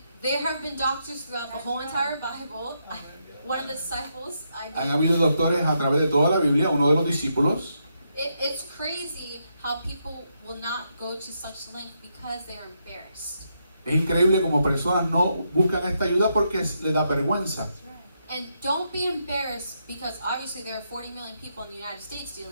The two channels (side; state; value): both; inverted; correlation -0.80